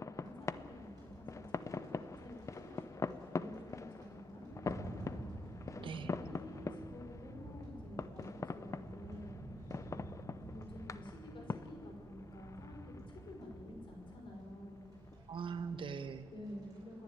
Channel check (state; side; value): normal; both; correlation 0.79